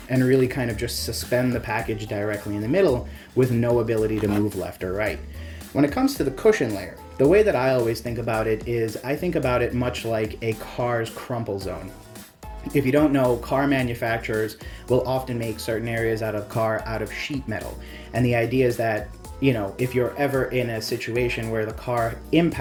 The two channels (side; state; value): both; identical; correlation 1.00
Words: and really kind of just suspend the package directly in the middle with no ability to move left or right. When it comes to the cushion layer, the way that I always think about it is I think about it much like a car's crumple zone. If you don't know, car manufacturers will often make certain areas out of sheet metal. And the idea is that, you know, if you're ever in a situation where the car